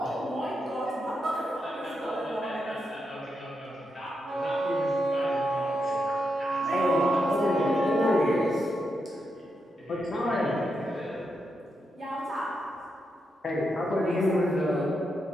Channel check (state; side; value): normal; both; correlation 0.84